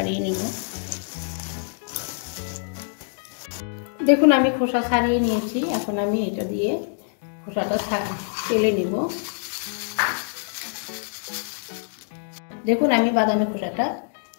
নিব। দেখুন আমি খোসা ছাড়িয়ে নিয়েছি। এখন আমি এটা দিয়ে খোসাটা তেলে নিব। দেখুন আমি বাদামের খোসাটা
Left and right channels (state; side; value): silent; right; digital silence